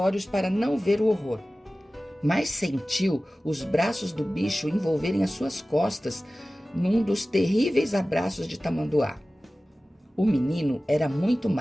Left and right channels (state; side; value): normal; both; correlation 0.97